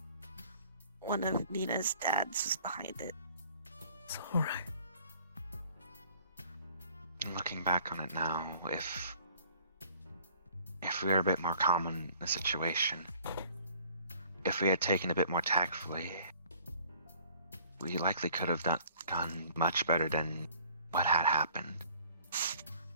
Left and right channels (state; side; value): inverted; both; correlation -0.55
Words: one of Nina's dads was behind it. It's alright. Looking back on it now, if we were a bit more calm in the situation, if we had taken a bit more tactfully, we likely could have done much better than what had happened.